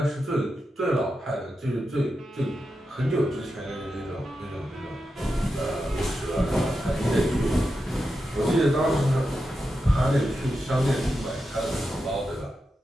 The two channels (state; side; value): normal; both; correlation 0.89